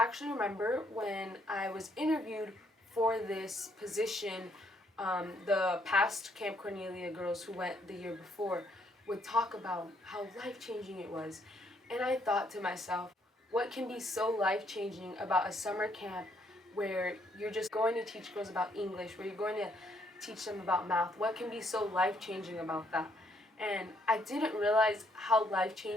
remember when I was interviewed for this position, the past Camp Cornelia girls who went the year before would talk about how life changing it was. And I thought to myself, what can be so life changing about a summer camp where you're just going to teach girls about English, where you're going to teach them about math? What can be so life changing about that? And I didn't realize how life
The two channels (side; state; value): both; normal; correlation 0.70